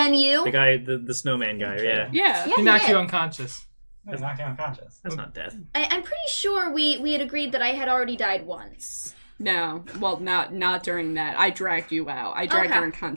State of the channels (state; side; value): inverted; both; correlation -1.00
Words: you? The guy, the snowman guy, yeah. Yeah. Yeah, He knocked did. you unconscious. He's knocked unconscious. That's not death. I'm pretty sure we had agreed that I had already died once. No, well, not during that. I dragged you out. I dragged Okay. your